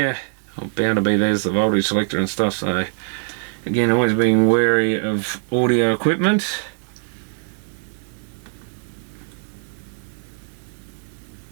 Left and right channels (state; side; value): silent; left; 64 dB below the other